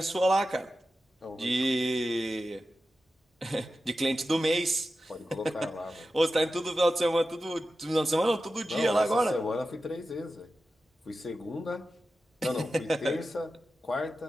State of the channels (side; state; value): both; normal; correlation 0.93